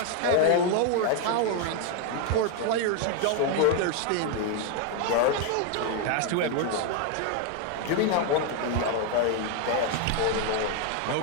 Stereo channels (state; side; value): different; both; correlation 0.00